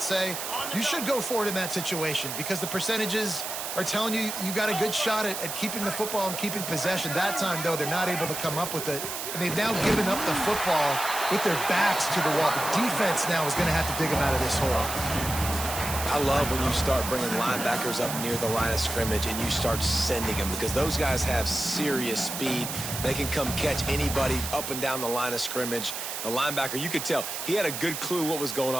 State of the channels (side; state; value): right; noise; hiss, 5 dB below the sound